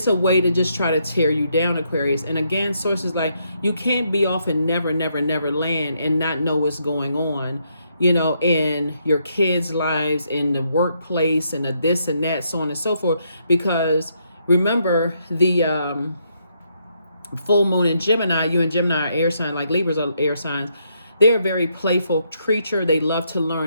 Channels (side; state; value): both; inverted; correlation -0.75